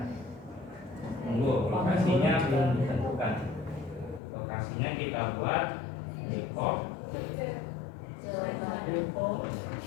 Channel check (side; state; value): right; drops out; at 4.2 s